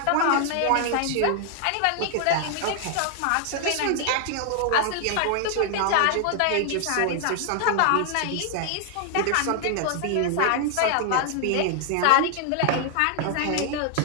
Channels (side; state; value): both; different; correlation 0.00